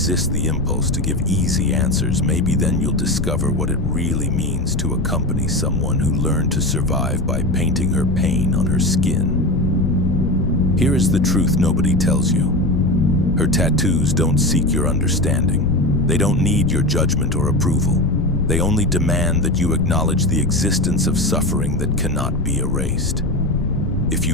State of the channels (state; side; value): noise; left; rumble, 3 dB below the sound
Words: the impulse to give easy answers, maybe then you'll discover what it really means to accompany someone who learned to survive by painting her pain on her skin. Here is the truth nobody tells you. Her tattoos don't seek your understanding. They don't need your judgment or approval. They only demand that you acknowledge the existence of suffering that cannot be erased. If